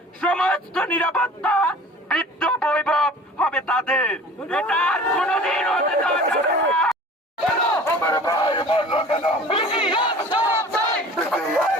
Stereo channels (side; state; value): both; normal; correlation 0.43